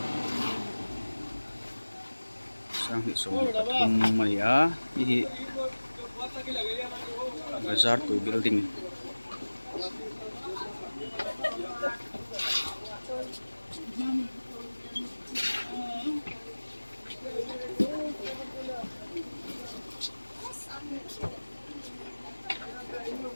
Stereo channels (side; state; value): both; inverted; correlation -1.00